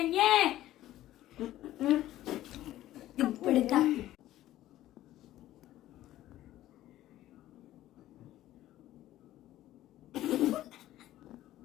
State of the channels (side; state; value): right; quieter; 14.3 dB